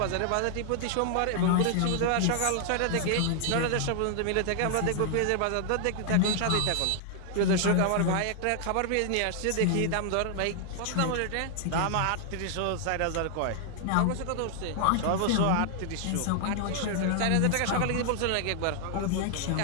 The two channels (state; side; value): different; both; correlation 0.00